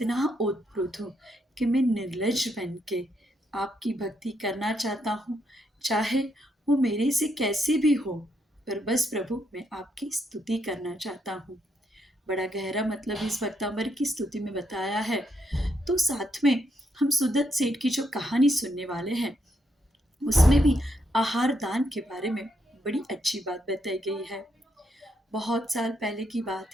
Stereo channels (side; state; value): both; normal; correlation 0.78